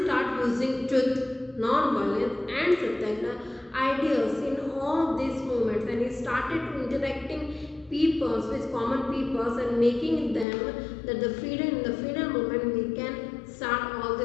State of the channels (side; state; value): right; drops out; at 10.5 s